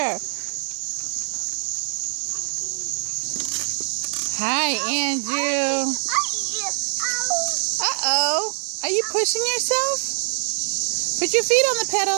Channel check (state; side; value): silent; left; 63 dB below the other